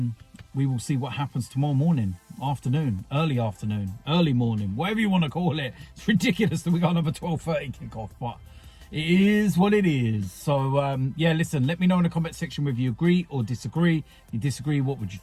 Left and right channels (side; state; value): both; identical; correlation 1.00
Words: we will see what happens tomorrow morning, afternoon, early morning, whatever you want to call it. It's ridiculous that we got another 12:30 kickoff, but it is what it is. So, yeah, listen, let me know in the comment section whether you agree or disagree. If you disagree, what would you